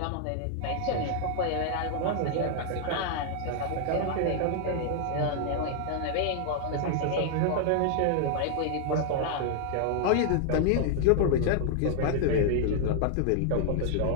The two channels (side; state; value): both; different; correlation -0.01